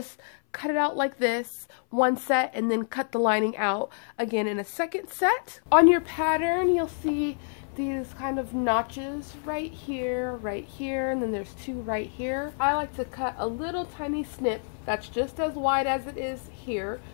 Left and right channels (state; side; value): silent; right; 57 dB below the other